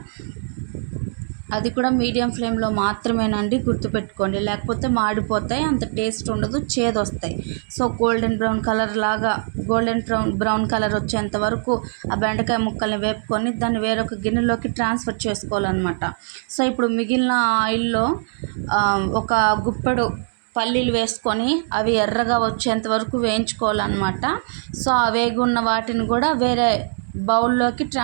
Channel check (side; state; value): left; silent; 64 dB below the other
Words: అది కూడా మీడియం ఫ్లేమ్లో మాత్రమేనండి, గుర్తుపెట్టుకోండి, లేకపోతే మాడిపోతాయి, అంత టేస్ట్ ఉండదు, చేదు వస్తాయి. సో గోల్డెన్ బ్రౌన్ కలర్ వచ్చేంత వరకు ఆ బెండకాయ ముక్కల్ని వేపుకొని దాన్ని వేరొక గిన్నెలోకి ట్రాన్స్ఫర్ చేసుకోవాలన్నమాట. సో ఇప్పుడు మిగిలిన ఆయిల్లో ఒక గుప్పెడు పల్లీలు వేసుకొని అవి ఎర్రగా వచ్చేంత వరకు వేయించుకోవాలన్నమాట. సో ఆ వేగున్న వాటిని కూడా వేరే బౌల్లోకి